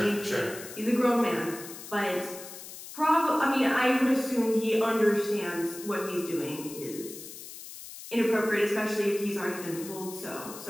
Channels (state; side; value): noise; left; hiss, 13 dB below the sound